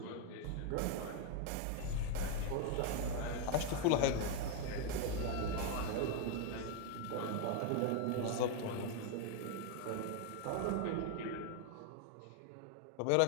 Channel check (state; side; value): different; both; correlation 0.01